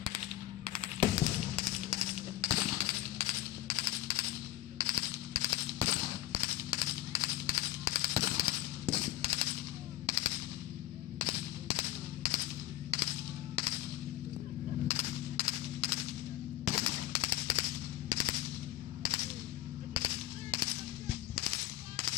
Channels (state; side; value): quieter; right; 15.1 dB